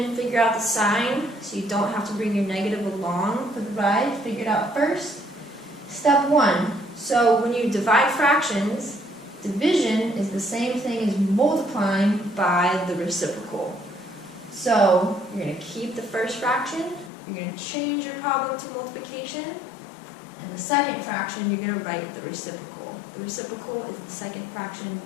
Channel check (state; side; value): drops out; right; at 17.1 s